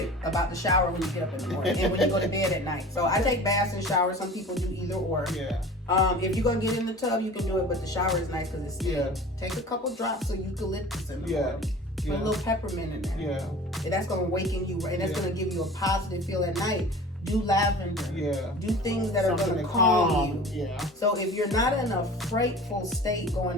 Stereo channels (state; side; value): normal; both; correlation 0.40